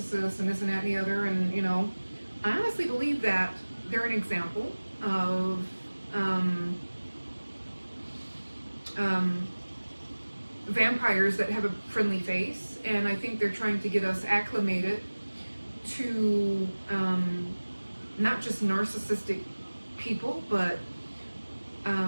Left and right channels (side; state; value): both; inverted; correlation -1.00